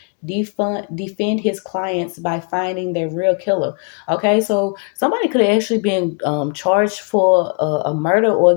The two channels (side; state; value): right; quieter; 38.5 dB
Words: defend his clients by finding their real killer. Okay, so somebody could have actually been charged for a murder, or